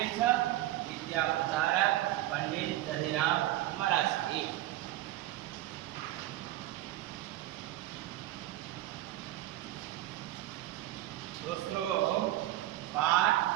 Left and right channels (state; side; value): quieter; left; 15.5 dB